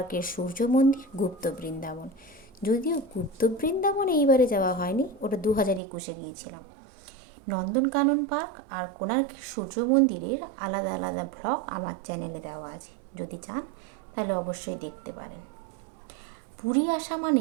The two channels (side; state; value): left; drops out; at 5.8 s